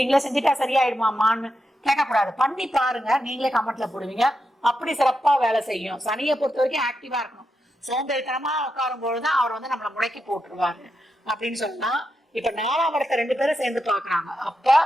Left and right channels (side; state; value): both; normal; correlation 0.86